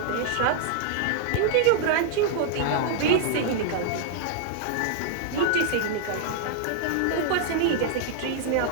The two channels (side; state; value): both; different; correlation -0.01